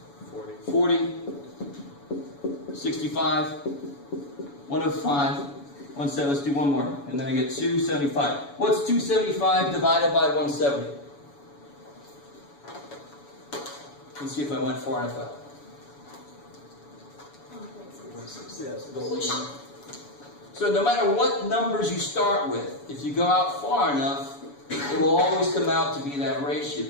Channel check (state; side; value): late; right; 7.0 ms